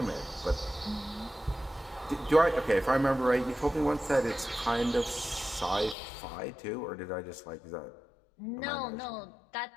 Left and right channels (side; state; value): right; drops out; at 6.0 s